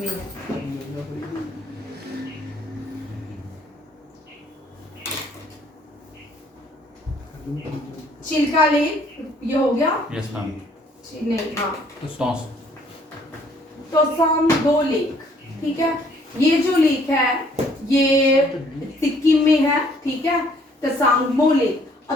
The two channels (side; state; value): both; normal; correlation 0.62